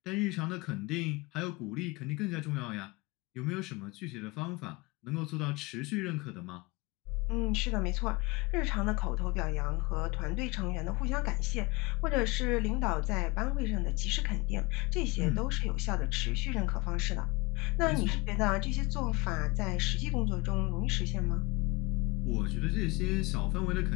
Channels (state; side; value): quieter; right; 25.2 dB